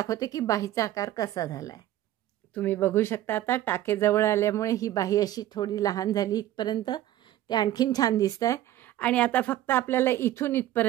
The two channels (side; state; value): left; quieter; 13.4 dB